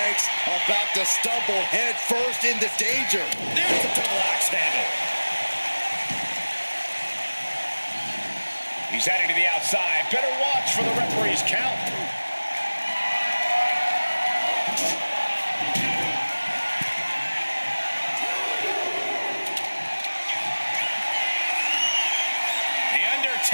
about to stumble head first into danger. There's the double axe handle. He's heading to the outside. Better watch for the referee's count. The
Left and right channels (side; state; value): both; inverted; correlation -1.00